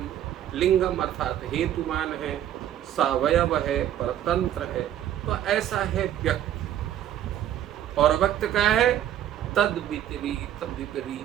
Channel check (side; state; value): left; quieter; 11.4 dB